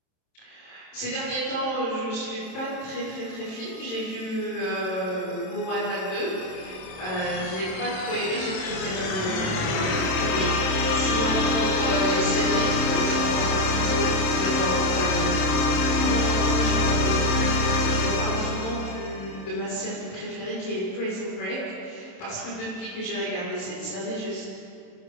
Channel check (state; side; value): late; right; 27 ms